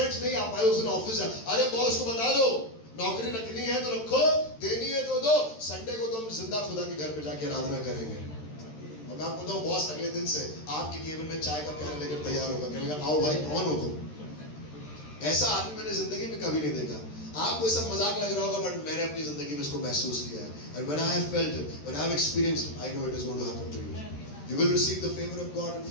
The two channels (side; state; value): right; late; 13 ms